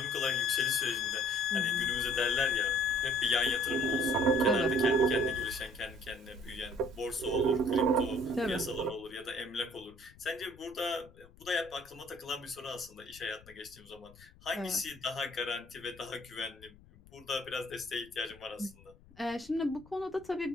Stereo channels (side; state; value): left; noise; rumble, 23 dB below the sound